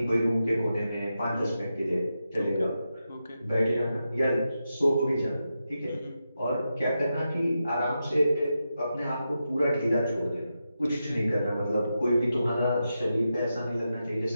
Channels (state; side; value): inverted; both; correlation -0.88